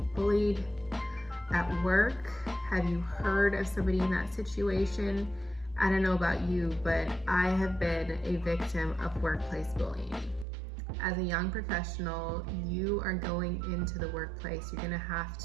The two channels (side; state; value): left; drops out; at 10.5 s